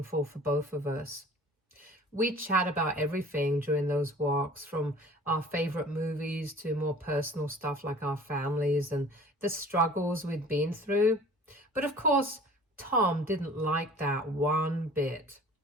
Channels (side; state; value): both; normal; correlation 0.47